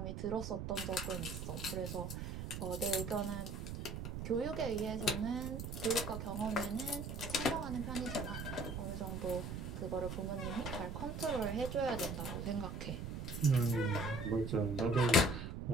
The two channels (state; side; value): noise; right; rumble, 5 dB below the sound